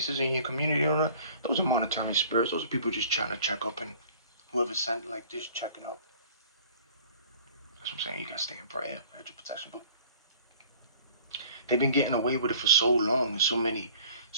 in your community, those are monitoring spirits. Those are people just trying to check up, and whoever sent like this checking up. That's what I'm saying. You gotta stay in prayer, hedge your protection. But they've been getting away with it for so long, and so many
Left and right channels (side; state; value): both; inverted; correlation -0.50